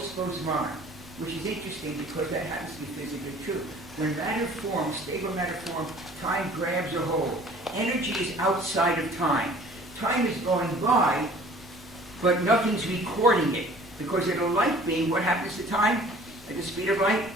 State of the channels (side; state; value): left; noise; rumble, 22 dB below the sound